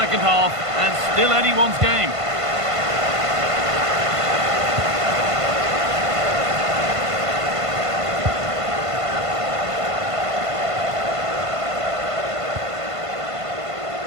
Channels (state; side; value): late; left; 1.5 ms